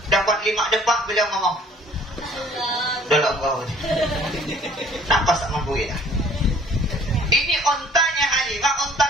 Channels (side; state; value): both; normal; correlation 0.54